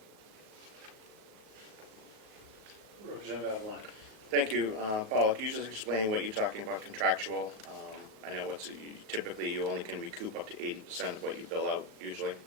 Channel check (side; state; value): left; late; 37 ms